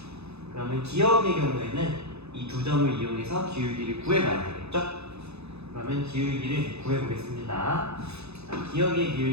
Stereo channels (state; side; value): late; left; 0.80 ms